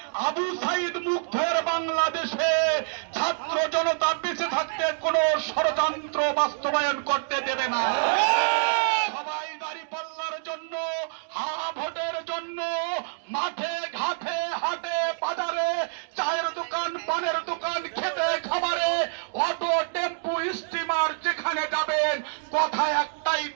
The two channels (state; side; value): silent; left; 60 dB below the other